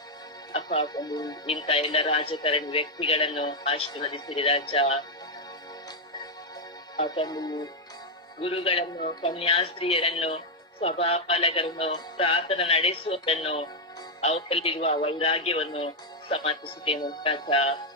ಅಪ್ಪ ತಂದೆ, ಇಂಥ ಎಲ್ಲ ರಾಜಕಾರಣಿ ವ್ಯಕ್ತಿಗಳನ್ನು ಆಶೀರ್ವದಿಸಿರಿ ರಾಜ. ತಂದೆ, ಗುರುಗಳನ್ನು, ಕನ್ಯಾಸ್ತ್ರೀಯರನ್ನು, ಸಭಾಪಾಲಕರನ್ನು, ಪ್ರಾರ್ಥನಾ ನಡೆಸುವವರನ್ನು, ಅವರಲ್ಲಿರುವ ವೈರಾಗ್ಯವನ್ನು ಸಮರ್ಥಿಸುತ್ತೇನೆ ರಾಜ.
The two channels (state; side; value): normal; both; correlation 0.01